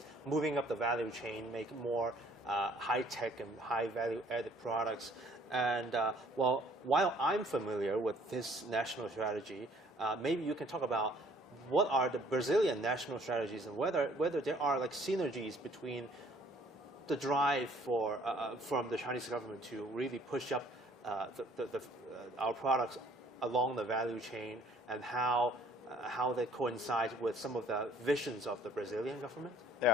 moving up the value chain, make more high-tech and high-value-added products. And while I'm familiar with this national strategy, maybe you can talk about what are the Brazilian national strategies and whether there are like synergies between the drive from the Chinese government to really push up our products along the value chain, and how that coincides with some of the visions of the Brazilian government?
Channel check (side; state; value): both; normal; correlation 0.58